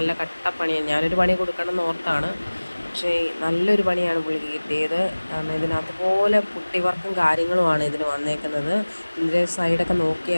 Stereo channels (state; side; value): inverted; both; correlation -1.00